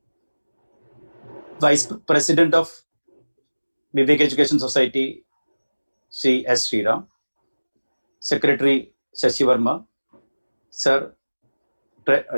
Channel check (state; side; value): inverted; both; correlation -1.00